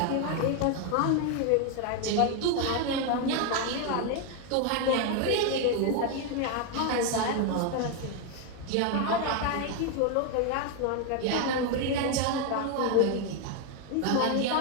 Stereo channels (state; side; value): different; both; correlation 0.01